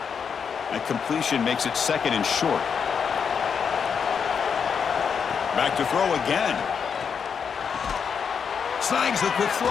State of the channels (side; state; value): right; quieter; 6.6 dB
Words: That completion makes it 2nd and short. Back to throw again. Snags the quick